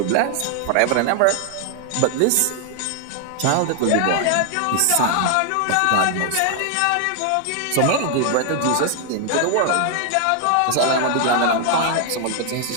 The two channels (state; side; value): different; both; correlation 0.00